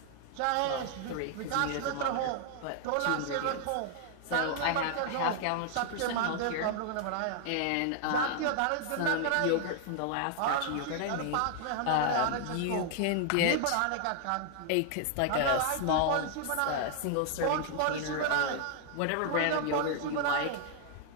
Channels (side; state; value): both; different; correlation 0.00